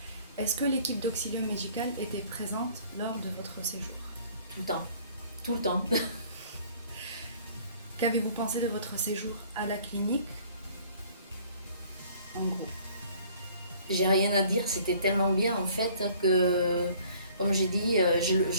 Est-ce que l'équipe d'Auxilium Médical était présente lors de votre séjour? Tout le temps, tout le temps. Qu'avez-vous pensé de votre séjour à la clinique? En gros. J'ai rien à dire, c'était tellement bien en fait que, comme j'ai dit,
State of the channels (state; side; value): inverted; both; correlation -0.55